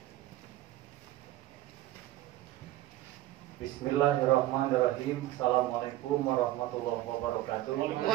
Bismillahirrahmanirrahim. Assalamualaikum warahmatullahi wabarakatuh.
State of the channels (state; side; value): quieter; left; 15.2 dB